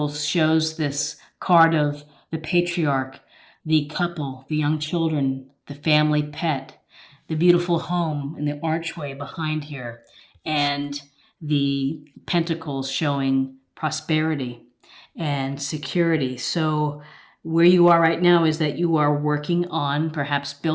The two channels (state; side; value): identical; both; correlation 1.00